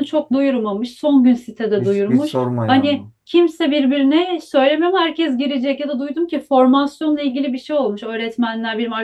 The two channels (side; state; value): both; identical; correlation 1.00